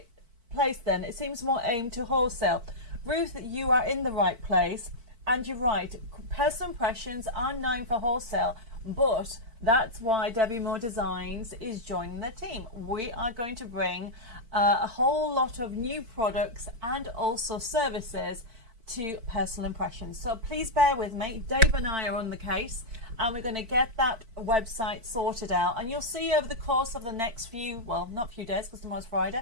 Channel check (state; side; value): late; left; 4.5 ms